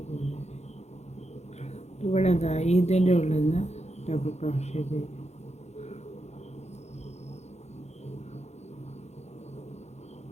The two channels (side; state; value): right; late; 0.32 ms